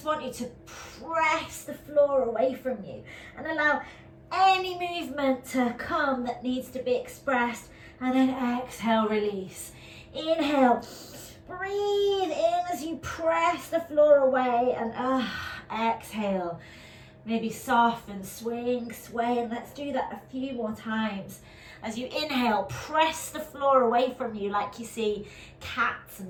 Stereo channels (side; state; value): both; identical; correlation 1.00